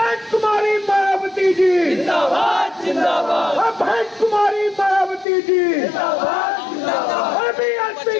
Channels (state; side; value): drops out; right; at 5.2 s